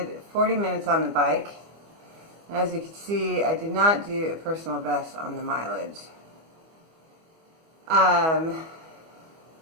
40 minutes on the bike. And as you can see, I did not do a personal best on the mileage.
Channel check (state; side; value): late; left; 25 ms